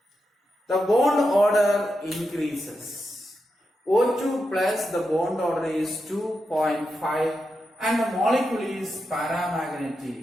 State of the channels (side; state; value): both; normal; correlation 0.87